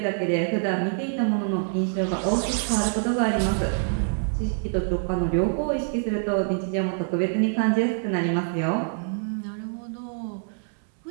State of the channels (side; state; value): left; silent; 61 dB below the other